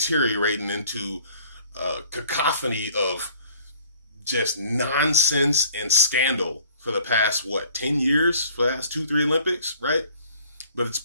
into a cacophony of just nonsense and scandal for the past, 10 years, for the past 2-3 Olympics, right? But it's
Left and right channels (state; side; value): inverted; both; correlation -0.54